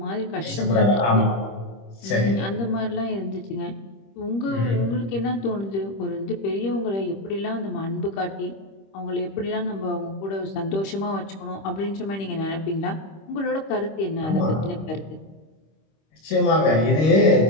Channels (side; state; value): right; late; 26 ms